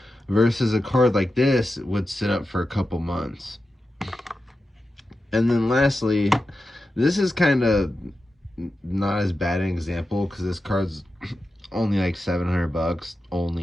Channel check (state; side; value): normal; both; correlation 0.91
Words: versus a card like this would sit up for a couple months. And then lastly, this is kind of not as bad an example because this card's only like 700 bucks